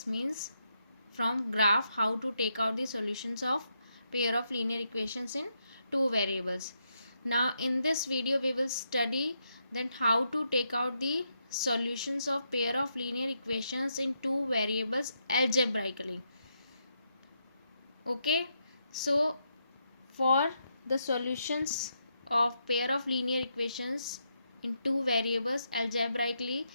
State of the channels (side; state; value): both; inverted; correlation -0.80